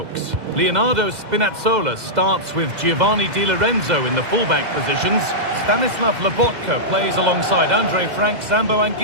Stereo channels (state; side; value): late; left; 2.0 ms